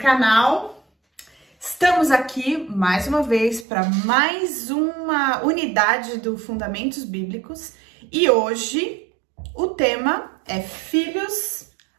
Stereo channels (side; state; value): left; drops out; at 3.7 s